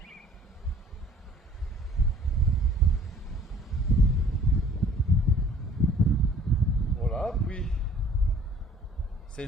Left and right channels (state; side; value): normal; both; correlation 0.54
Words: Voilà, puis c'est